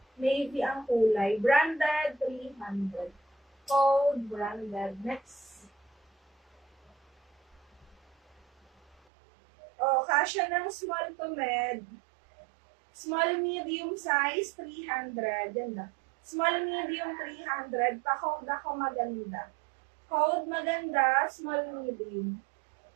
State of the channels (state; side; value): drops out; left; at 9.0 s